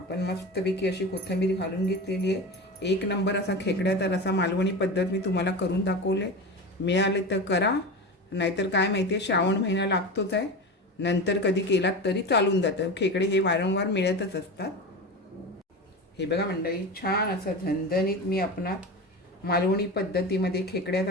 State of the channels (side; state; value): both; normal; correlation 0.26